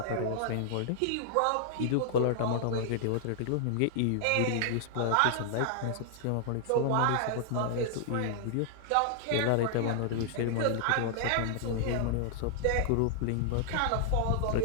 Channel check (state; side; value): different; both; correlation -0.01